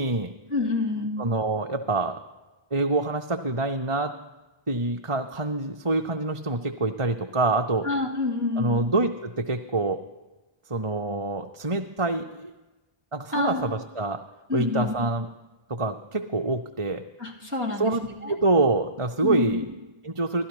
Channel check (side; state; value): left; late; 1.4 ms